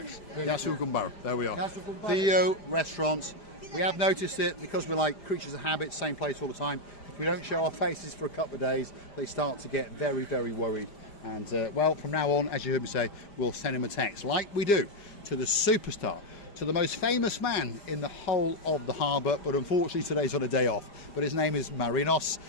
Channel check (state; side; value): late; right; 5.0 ms